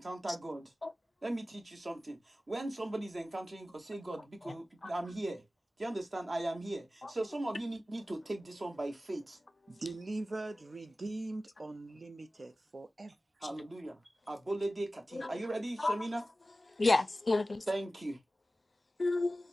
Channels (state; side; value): normal; both; correlation 0.96